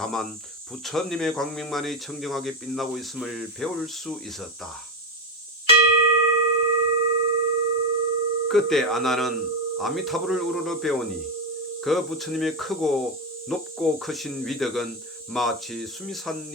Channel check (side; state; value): both; normal; correlation 0.13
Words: 부처님의 광명만이 청정하게 빛나고 있음을 배울 수 있었다. 그때 아난은 아미타불을 우러러 배우니 그 부처님의 크고 높고 크신 위덕은 마치